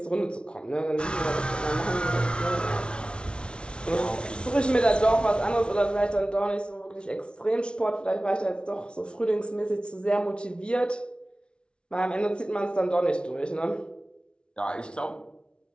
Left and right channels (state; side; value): late; right; 0.057 ms